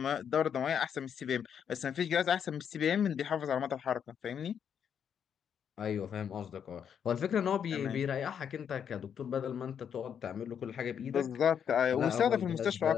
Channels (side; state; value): right; quieter; 8.1 dB